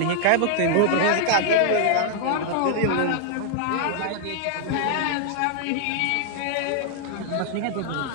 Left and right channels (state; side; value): different; both; correlation 0.00